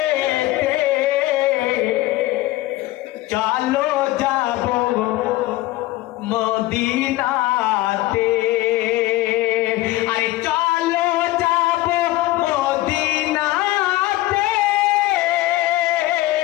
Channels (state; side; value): quieter; right; 17.4 dB